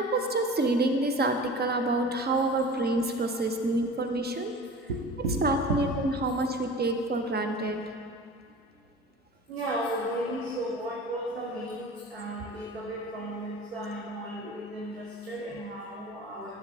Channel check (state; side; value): normal; both; correlation 0.38